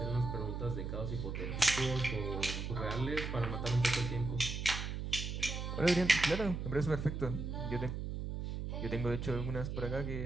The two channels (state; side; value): noise; right; hum, 4 dB below the sound